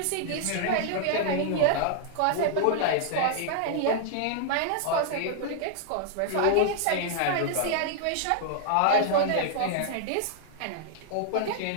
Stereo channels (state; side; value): different; both; correlation -0.01